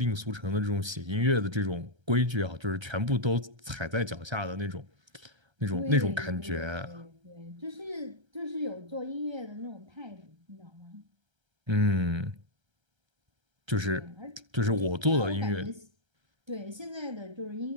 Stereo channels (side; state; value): left; late; 1.3 ms